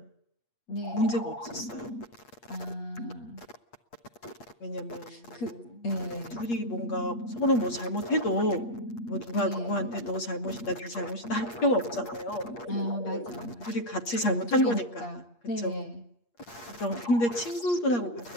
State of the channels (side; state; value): right; late; 8.5 ms